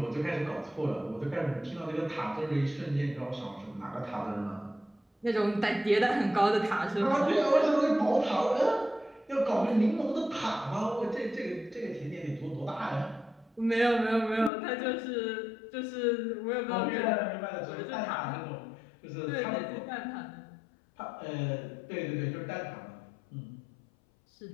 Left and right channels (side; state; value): right; drops out; at 14.5 s